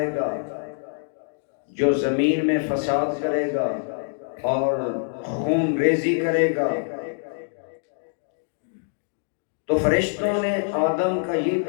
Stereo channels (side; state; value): right; silent; digital silence